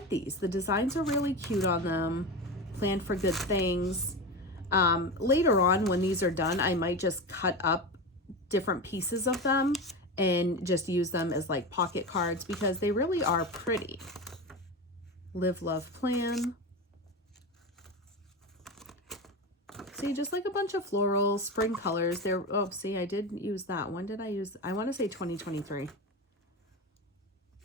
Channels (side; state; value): both; normal; correlation 0.22